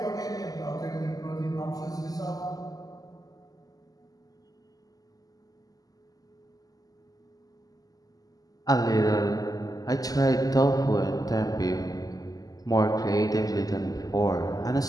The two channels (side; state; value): right; late; 0.17 ms